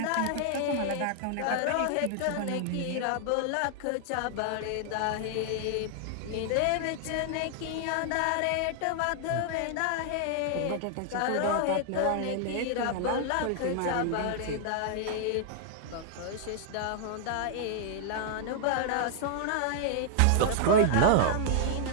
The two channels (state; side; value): different; both; correlation -0.01